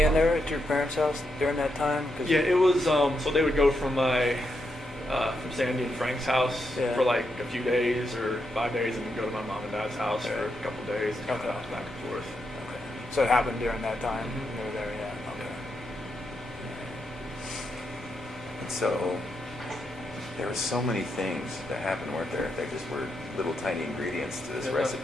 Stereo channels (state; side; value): normal; both; correlation 0.82